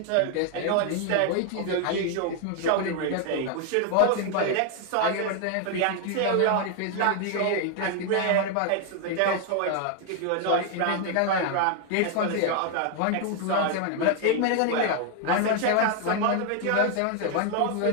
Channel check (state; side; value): different; both; correlation 0.00